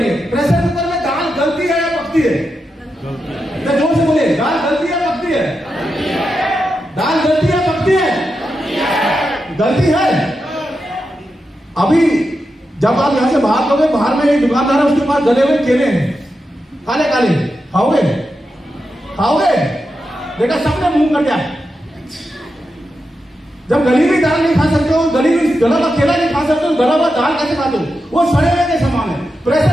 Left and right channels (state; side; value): normal; both; correlation 0.88